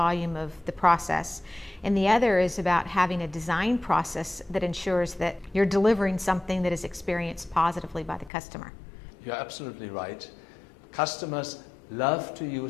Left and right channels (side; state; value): right; drops out; at 8.3 s